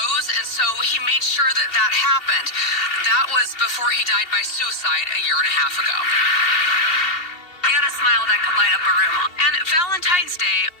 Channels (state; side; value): late; right; 2.8 ms